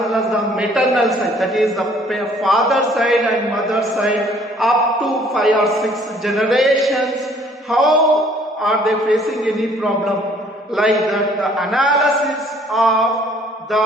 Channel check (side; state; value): both; normal; correlation 0.59